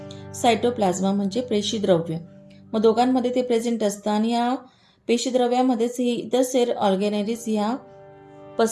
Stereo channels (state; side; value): identical; both; correlation 1.00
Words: सायटोप्लाझ्मा म्हणजे पेशीद्रव्य. मग दोघांमध्ये ते प्रेझेंट असतं आणि या पेशीद्रव्यामध्येच ही इतर सेल ऑर्गॅनेलिज ह्या